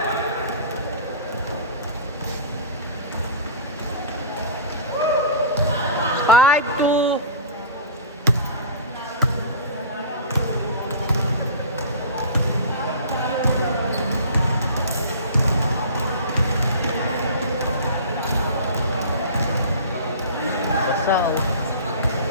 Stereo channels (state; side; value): inverted; both; correlation -0.37